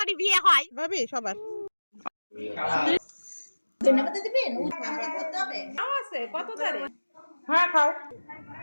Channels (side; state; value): both; inverted; correlation -1.00